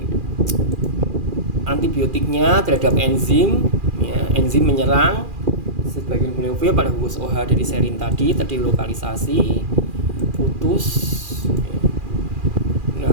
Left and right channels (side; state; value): left; late; 2.4 ms